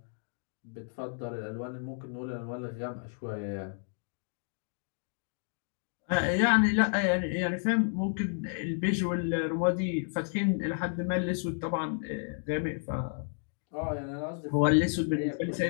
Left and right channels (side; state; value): right; silent; digital silence